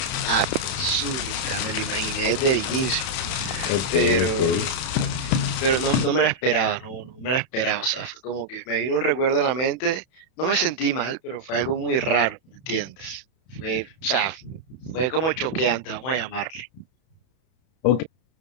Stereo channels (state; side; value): late; right; 31 ms